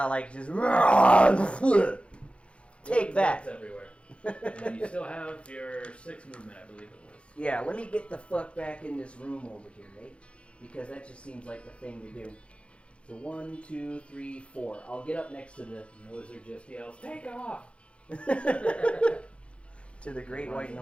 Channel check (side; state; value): right; late; 0.060 ms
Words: like just take that. That's everywhere. And then you still have your 6 movement, I believe it was. Yeah, let me get the fuck back in this room over here, right? Because that just seems like the thing to do. So 1, 2, 3, 4. I'll get up next to the And the wizard just yells, "Take off!" to the Great White